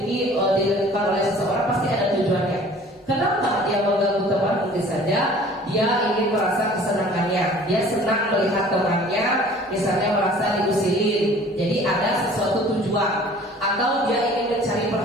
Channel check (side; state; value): both; normal; correlation 0.49